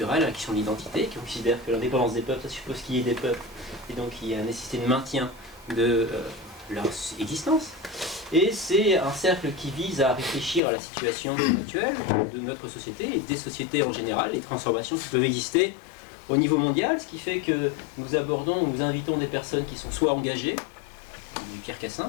à la question de l'identité, qui considère que l'indépendance des peuples, ça suppose qu'il y ait des peuples, et donc il y a la nécessité de maintien de leur existence. Et c'est un cercle qui vise à réfléchir à la situation actuelle de notre société et des sociétés en général, les transformations qui peuvent exister au niveau mondial, ce qui fait que nous invitons des personnes qui sont soit engagées, du Pierre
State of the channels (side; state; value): right; drops out; at 10.6 s